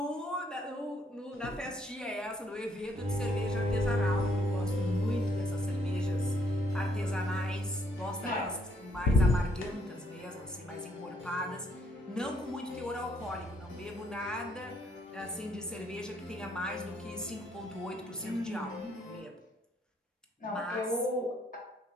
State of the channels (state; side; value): normal; both; correlation 0.69